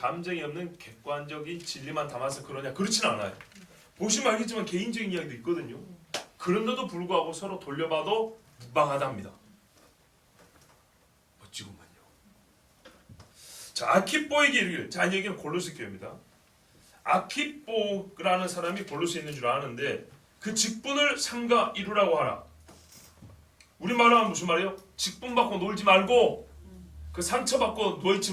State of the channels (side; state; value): both; identical; correlation 1.00